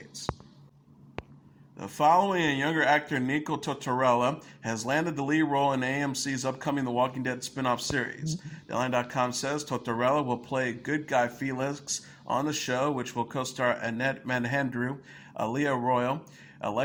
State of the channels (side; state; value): both; identical; correlation 1.00